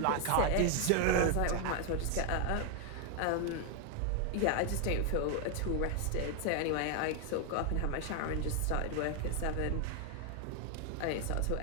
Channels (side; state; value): both; different; correlation 0.00